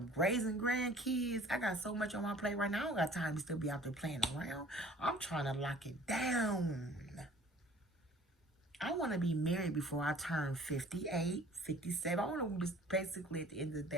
raising grandkids. I got so much on my plate right now. I don't got time to still be out there playing around. I'm trying to lock it down. I want to be married before I turn 58, 57. I want to, basically, at the end of the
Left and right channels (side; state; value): both; normal; correlation 0.50